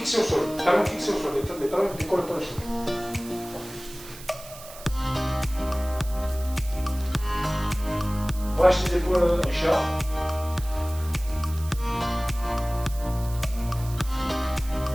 au sol, talons fixés au sol, les talons ne décollent pas le sol. Relâche les épaules, Richard.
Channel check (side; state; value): right; noise; hiss, 16 dB below the sound